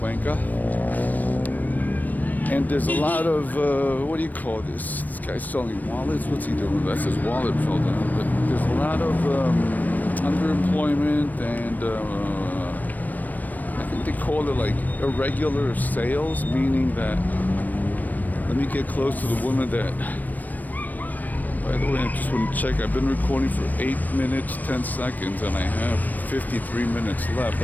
And there's a lot of, what do you call this? This guy's selling wallets. What's he doing? That's his wallet fell down. But there's a lot of underemployment and I think they call it like irregular sales, meaning that, let me get close to the woman that, by the way, I just want to check. I've been recording for 8 minutes, 10 seconds, and I have 53 minutes left.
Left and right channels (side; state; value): right; late; 0.084 ms